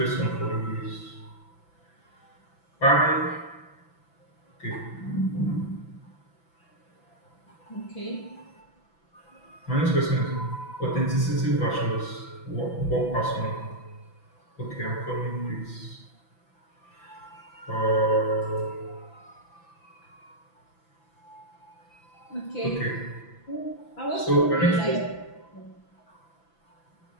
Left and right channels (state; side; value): late; right; 6.0 ms